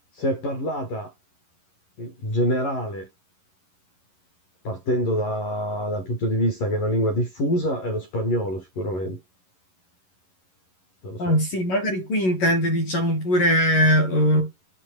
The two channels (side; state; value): right; late; 11 ms